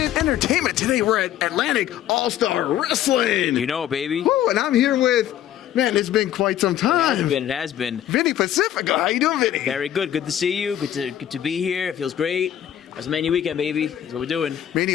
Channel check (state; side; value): quieter; right; 11.2 dB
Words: Entertainment. Today we're at Atlantic All-Star Wrestling. You know, baby. Woo, and I'm here with, man, it's been quite some time. It has been. Vinny Pacifico. How you doing, Vinny? Very good. Good to see you. Good to be here. It feels great. That's Mania Weekend, baby. That's what we're doing.